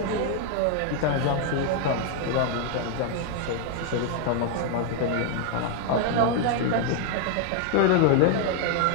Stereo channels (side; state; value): both; different; correlation 0.00